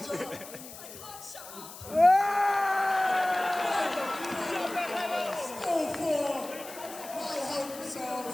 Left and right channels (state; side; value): noise; left; hiss, 14 dB below the sound